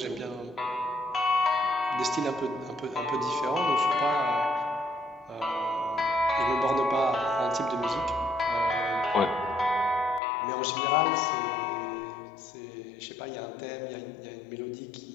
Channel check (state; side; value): drops out; right; at 10.2 s